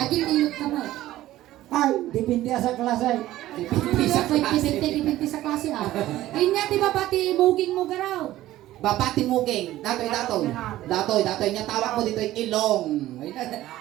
Agil nilot ka mo. Ay, dipindi sa klase. Dipindi sa klase ah. Inya di ba pati muging mo garaw? Babati mugeng, datoy. Datoy niya tawag mo dito yung ilong.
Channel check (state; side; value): quieter; left; 15.0 dB